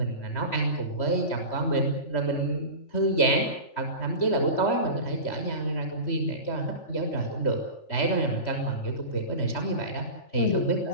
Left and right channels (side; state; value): right; late; 3.1 ms